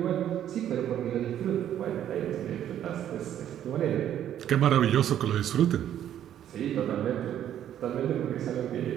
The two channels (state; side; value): quieter; left; 10.8 dB